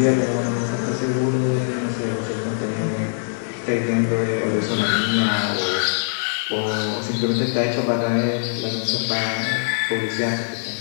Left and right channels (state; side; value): silent; right; 64 dB below the other